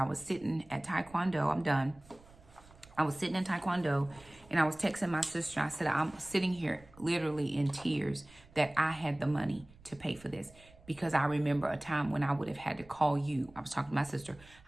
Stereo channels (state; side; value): noise; right; rumble, 24 dB below the sound